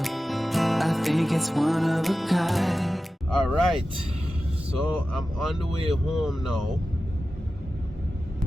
I think it's one of a kind. Alright, so I'm on the way home now.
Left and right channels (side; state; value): both; normal; correlation 0.94